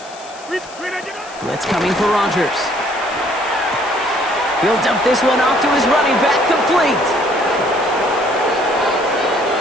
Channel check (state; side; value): noise; left; hiss, 19 dB below the sound